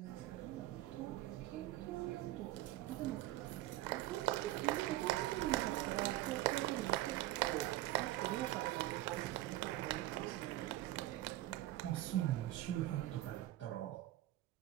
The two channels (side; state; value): left; quieter; 15.9 dB